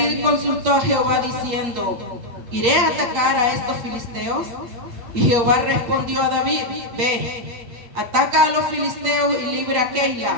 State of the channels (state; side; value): late; left; 8.6 ms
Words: consultó a Jehová diciendo: ¿iré a atacar a estos filisteos? Y Jehová respondió a David: ve, ataca a los filisteos y libra a